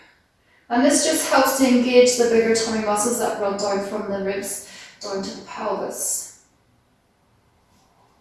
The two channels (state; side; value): identical; both; correlation 1.00